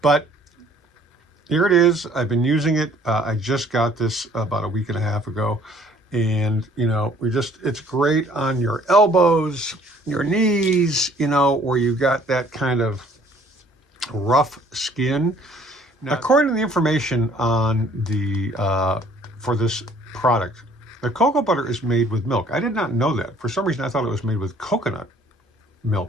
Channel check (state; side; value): normal; both; correlation 0.57